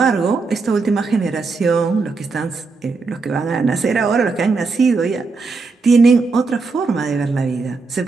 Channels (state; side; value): quieter; left; 4.2 dB